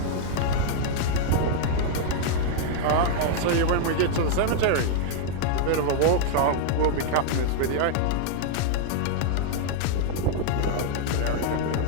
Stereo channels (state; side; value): different; both; correlation -0.01